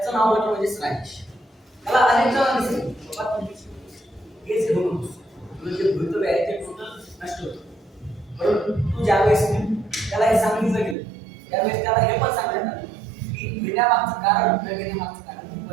नाव म्हणजे राजेश. त्याला अनेक जणांनी सांगितलं बाबा तुम्ही केस घेऊ नको, तुझं जे भवितव्य आहे ते टोटल नष्ट होतं. परंतु तू ज्यावेळेस त्याला हे सांगितलं गेलं त्यावेळेस त्याला हे पण सांगण्यात आलं की घेण्यामागचं कारण न घेण्यामागचं कारण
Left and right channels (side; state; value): left; drops out; at 11.0 s